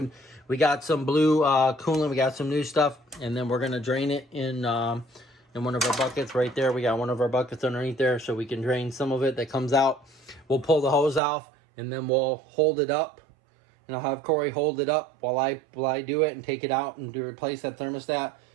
We got some blue coolant. We got some new stuff, and then we're gonna drain it in one of our buckets right there. We got one of our buckets underneath there, so we can drain some of it that comes out. We'll pull the hose off, and then we'll hold it up, and I'll have Corey hold it up while I do it and take it out and replace that thermostat.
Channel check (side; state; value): left; drops out; at 11.2 s